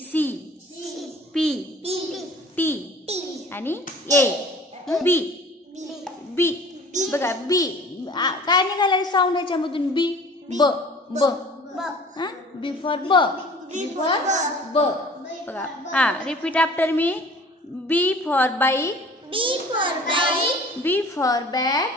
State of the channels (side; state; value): both; normal; correlation 0.47